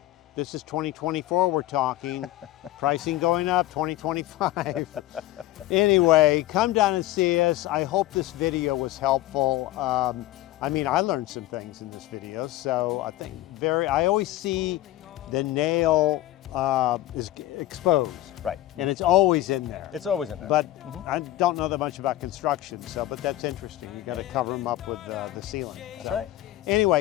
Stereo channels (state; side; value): quieter; right; 15.6 dB